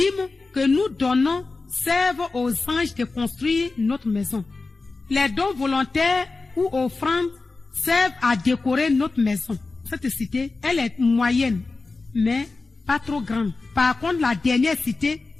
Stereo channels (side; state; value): right; quieter; 3.7 dB